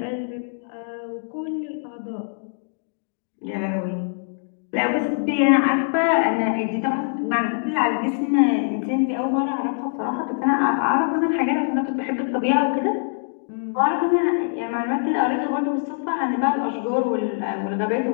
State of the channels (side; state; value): right; silent; digital silence